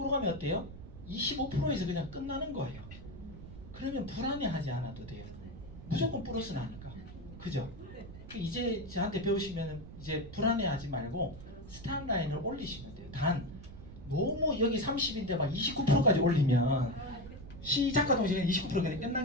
가면 어때요? 25%에서 그냥 끝나는 거예요. 그러면 불안해하지 않아도 돼요. 무조건 플러스 나니까. 그죠? 이제 저한테 배우시면 이제 불안해하지 말고 스탑 라인을 올리시면 돼요. 단 너무 여기 30인데 막 29%까지 올리면 시작과 동시에 29% 그냥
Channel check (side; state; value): right; noise; rumble, 14 dB below the sound